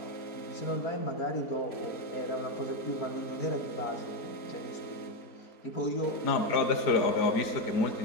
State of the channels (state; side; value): late; right; 4.4 ms